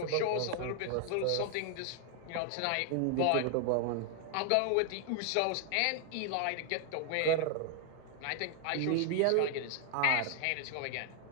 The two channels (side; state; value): both; different; correlation 0.00